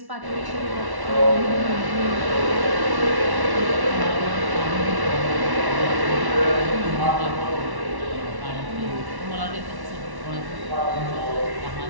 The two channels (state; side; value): late; left; 1.1 ms